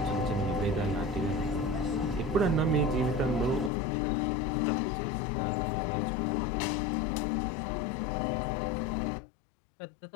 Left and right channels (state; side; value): drops out; right; at 3.7 s